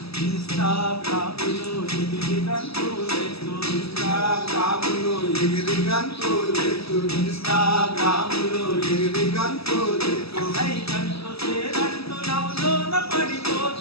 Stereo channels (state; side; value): late; right; 0.77 ms